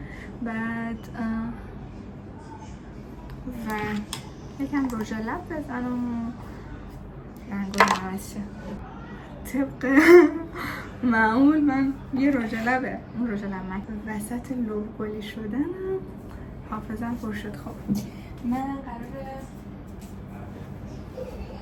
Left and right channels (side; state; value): both; identical; correlation 1.00